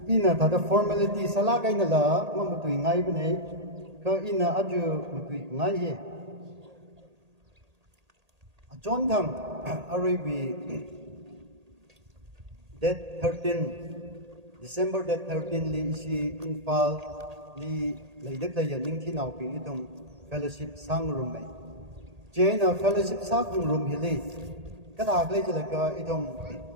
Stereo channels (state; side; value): late; left; 1.8 ms